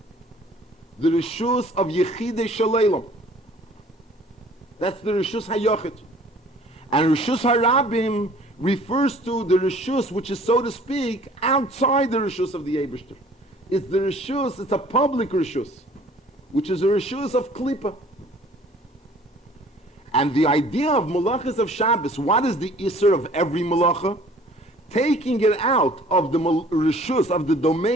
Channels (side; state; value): both; normal; correlation 0.53